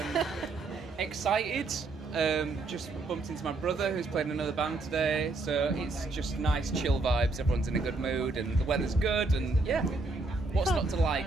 Excited. Just bumped into my brother who's playing another band today, so it's just nice, chill vibes. Everyone's in a good mood, and the weather's good, and yeah. What's not to like,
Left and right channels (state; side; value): quieter; left; 3.4 dB